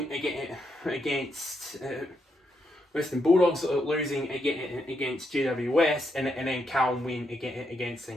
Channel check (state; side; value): normal; both; correlation 0.80